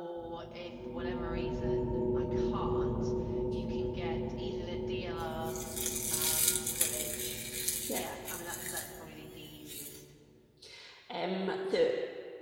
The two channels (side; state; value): both; identical; correlation 1.00